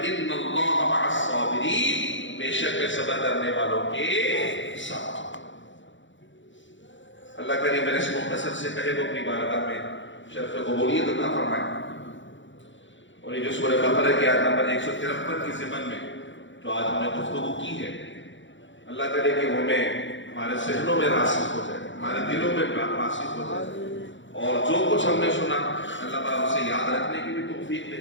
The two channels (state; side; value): late; right; 0.55 ms